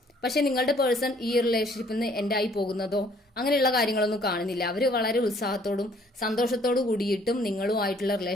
പക്ഷെ നിങ്ങളുടെ പേഴ്സൺ ഈ റിലേഷൻഷിപ്പിൽ നിന്ന് എൻഡ് ആയി പോകുന്നതോ അങ്ങനെയുള്ള കാര്യങ്ങളൊന്നും കാണുന്നില്ല. അവർ വളരെ ഉത്സാഹത്തോടും സന്തോഷത്തോടു കൂടിയിട്ടും നിങ്ങളുമായിട്ടുള്ള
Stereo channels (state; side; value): normal; both; correlation 0.61